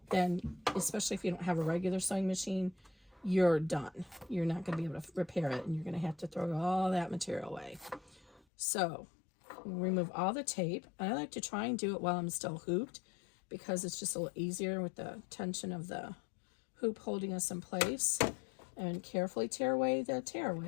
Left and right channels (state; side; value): drops out; right; at 8.4 s